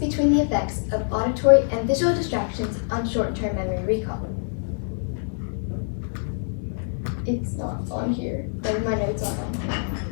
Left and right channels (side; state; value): right; silent; digital silence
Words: the effects of auditory and visual distractions on short-term memory recall. It's not on here. Maybe my notes aren't on here.